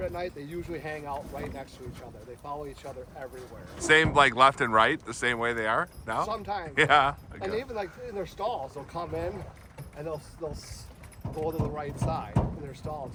at night, they usually hang out right next to each other. They follow each other everywhere. Same like left and right, the same way they are now? Sometimes. Yeah. And Okay. even like in their stalls, they'll come in and they'll go to the right side in their stalls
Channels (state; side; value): identical; both; correlation 1.00